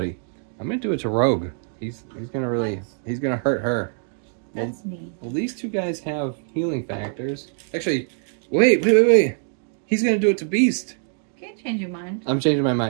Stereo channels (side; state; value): left; silent; 56 dB below the other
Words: I'm gonna do it to Rogue. He's gonna really. He's gonna hurt her. That's me. Well, these 2 guys have healing factors. Actually. Wait. He's gonna do it to Beast. Can't change your mind. I'm changing my